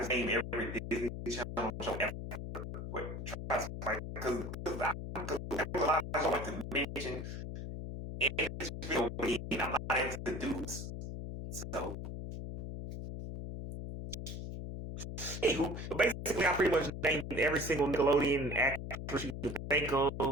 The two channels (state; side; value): noise; left; hum, 7 dB below the sound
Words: name every Disney Channel show ever. But try to like because there's a lot I like to mention in this video. I'm not into dudes, so. Anywho, basically, I pretty much named every single Nickelodeon actress you can think